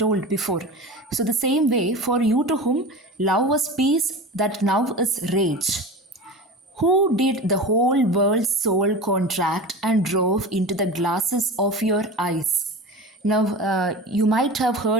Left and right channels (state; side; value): normal; both; correlation 0.31